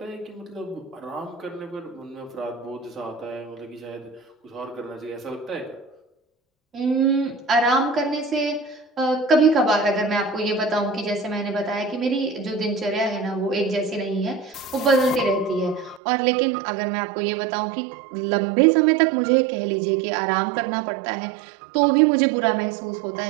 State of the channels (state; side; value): drops out; left; at 16.0 s